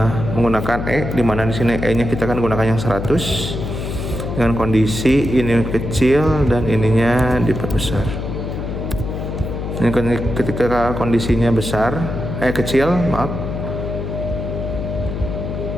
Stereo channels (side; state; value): left; noise; hum, 5 dB below the sound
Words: di mana di sini E-nya kita akan gunakan yang 100 dengan kondisi ini kecil dan ininya diperbesar. Ini ketika kondisinya kecil, maaf.